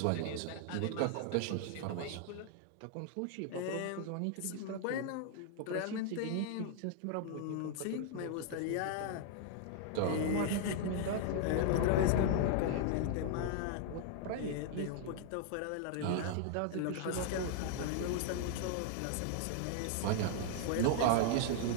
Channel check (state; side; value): different; both; correlation 0.00